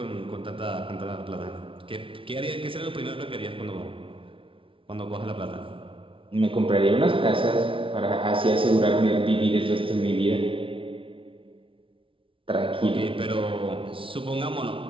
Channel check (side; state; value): left; late; 0.25 ms